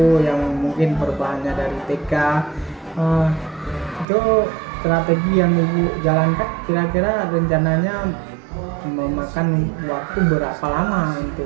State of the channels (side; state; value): left; drops out; at 4.0 s